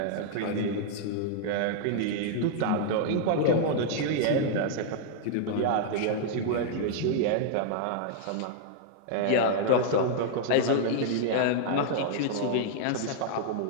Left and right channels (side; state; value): both; different; correlation -0.01